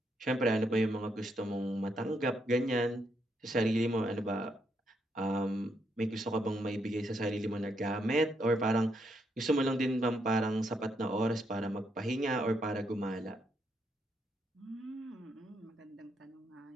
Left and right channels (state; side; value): normal; both; correlation 0.77